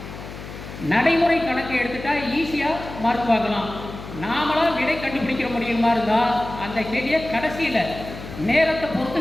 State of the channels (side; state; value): left; noise; hum, 12 dB below the sound